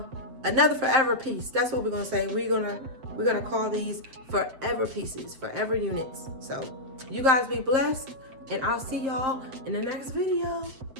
Another forever piece. That's what we're gonna say. We're gonna call these forever pieces, forever units. So you guys be blessed, and I'll see y'all in the next video.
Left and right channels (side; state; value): left; late; 7.6 ms